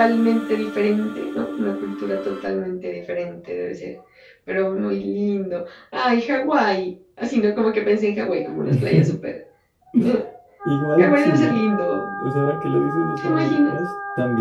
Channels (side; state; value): both; identical; correlation 1.00